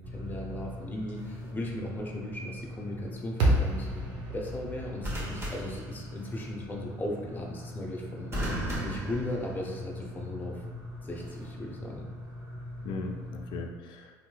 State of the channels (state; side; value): normal; both; correlation 0.61